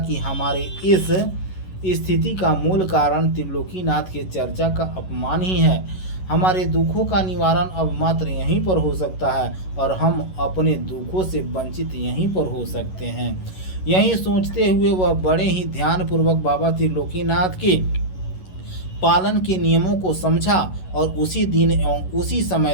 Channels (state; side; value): late; right; 11 ms